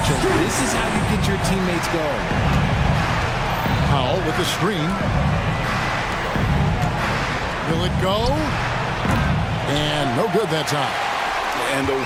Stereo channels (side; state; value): both; identical; correlation 1.00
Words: This is how you get your teammates going. Powell with the screen. Will it go? And no good that time. And the